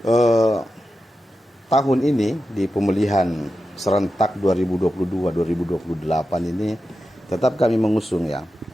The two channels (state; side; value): normal; both; correlation 0.91